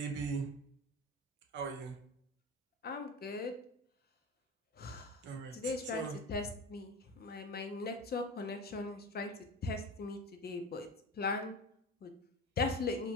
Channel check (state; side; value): normal; both; correlation 0.28